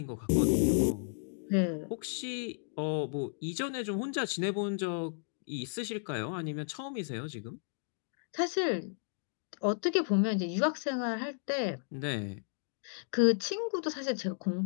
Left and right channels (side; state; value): right; silent; digital silence